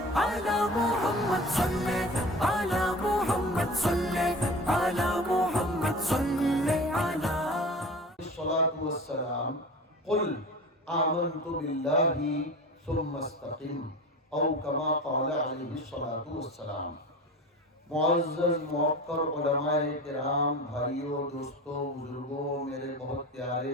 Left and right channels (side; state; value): both; normal; correlation 0.35